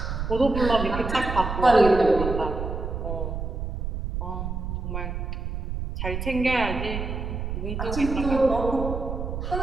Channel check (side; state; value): right; noise; rumble, 4 dB below the sound